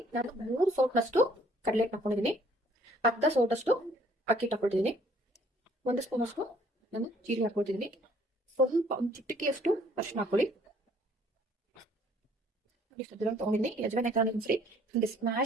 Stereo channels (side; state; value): both; normal; correlation 0.60